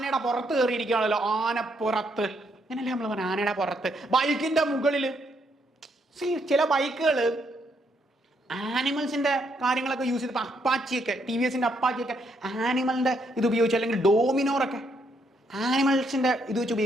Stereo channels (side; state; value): both; normal; correlation 0.74